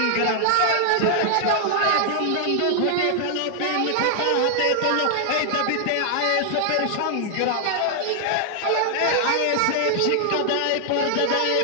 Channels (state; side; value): different; both; correlation 0.00